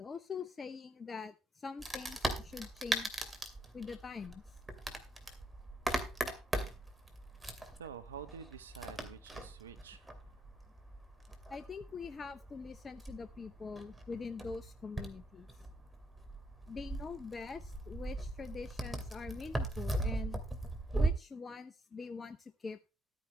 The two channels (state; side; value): normal; both; correlation 0.77